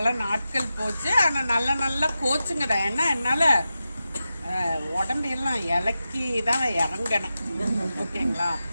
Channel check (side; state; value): both; inverted; correlation -0.91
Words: நாட்கள் போச்சு. ஆனா நல்ல நல்ல கோச்சுங்க தான். ஏன்னா என்னால உடம்பெல்லாம் இலக்கி தான் இறங்கினேன். ஓகேங்களா?